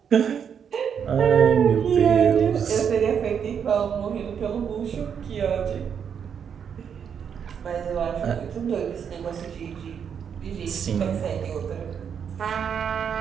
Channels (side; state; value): left; quieter; 7.6 dB